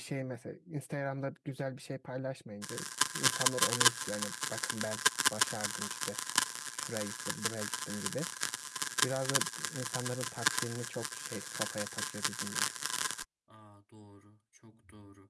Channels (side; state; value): both; identical; correlation 1.00